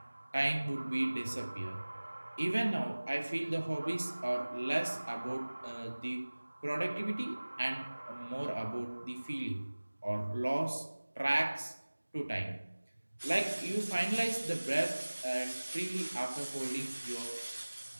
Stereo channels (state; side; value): inverted; both; correlation -1.00